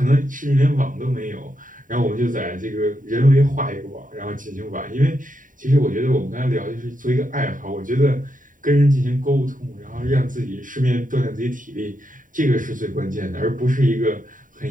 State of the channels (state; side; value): late; left; 0.39 ms